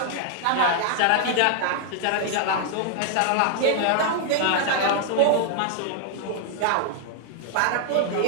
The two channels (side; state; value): both; different; correlation 0.00